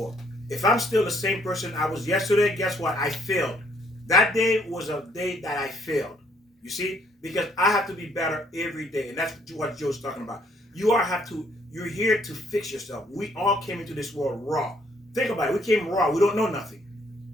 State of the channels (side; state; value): both; normal; correlation 0.66